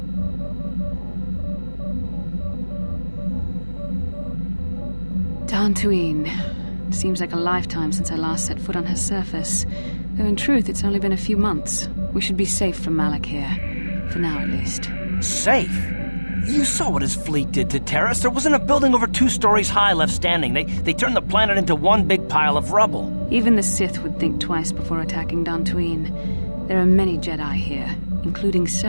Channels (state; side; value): inverted; both; correlation -1.00